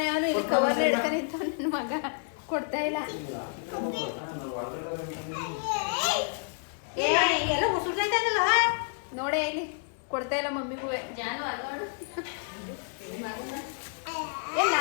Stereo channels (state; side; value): silent; right; 58 dB below the other